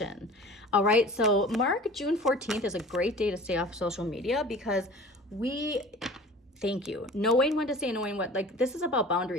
All right, so mark June 14th is a great day to stay off social media, because thank you, knowing when to say, knowing what, like, this is about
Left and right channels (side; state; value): both; normal; correlation 0.42